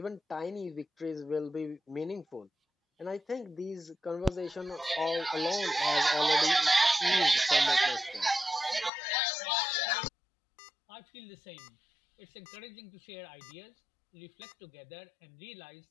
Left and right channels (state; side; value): drops out; right; at 8.9 s